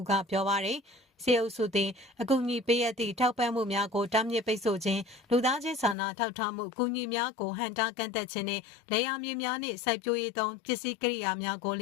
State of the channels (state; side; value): drops out; right; at 6.0 s